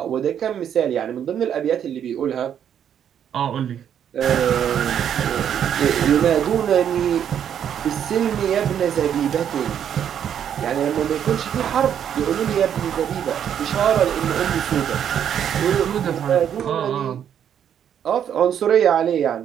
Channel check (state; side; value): quieter; left; 9.1 dB